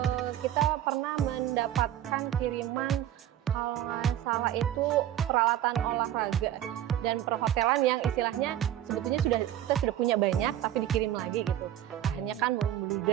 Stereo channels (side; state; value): left; quieter; 11.8 dB